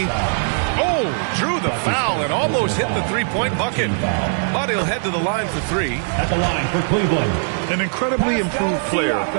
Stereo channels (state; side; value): silent; left; 66 dB below the other